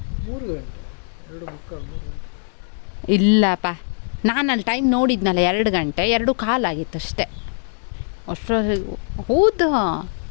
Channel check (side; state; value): right; silent; 60 dB below the other